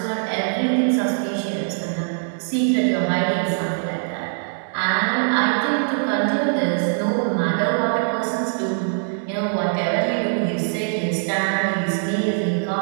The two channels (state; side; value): silent; left; 59 dB below the other